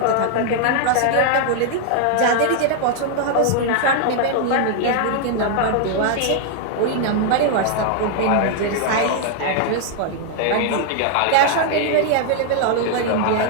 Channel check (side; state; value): both; different; correlation 0.00